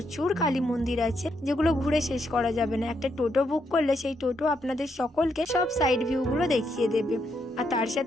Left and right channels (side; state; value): both; normal; correlation 0.78